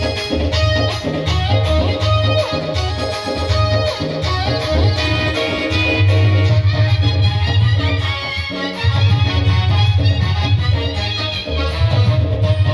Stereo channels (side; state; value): both; identical; correlation 1.00